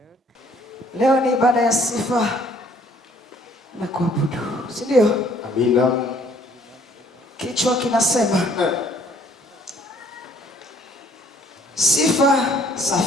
Leo ni ibada ya sifa na kuabudu. Si ndio? Amina. Kichwa kinasema sifa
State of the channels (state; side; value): normal; both; correlation 0.61